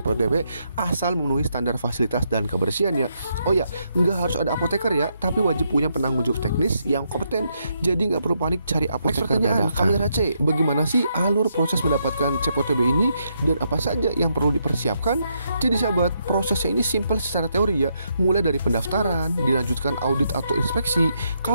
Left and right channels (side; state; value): both; inverted; correlation -0.78